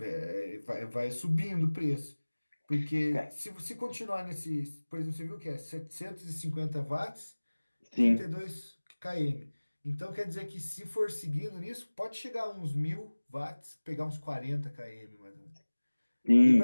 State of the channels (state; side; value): inverted; both; correlation -1.00